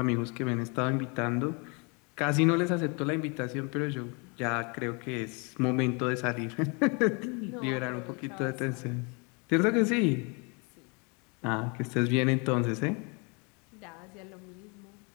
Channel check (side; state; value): right; quieter; 32.2 dB